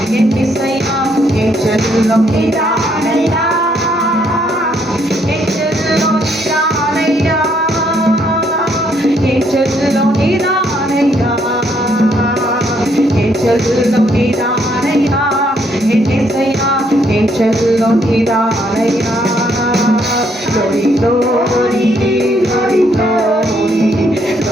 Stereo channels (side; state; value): both; normal; correlation 0.71